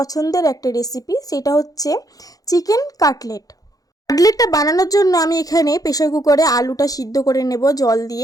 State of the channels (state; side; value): late; right; 0.17 ms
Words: একটা রেসিপি। সেটা হচ্ছে চিকেন কাটলেট। কাটলেটটা বানানোর জন্য আমি এখানে প্রেসার কুকারে আলুটা সিদ্ধ করে নেব জল